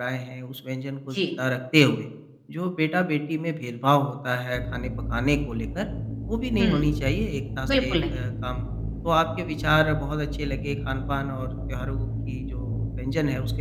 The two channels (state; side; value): identical; both; correlation 1.00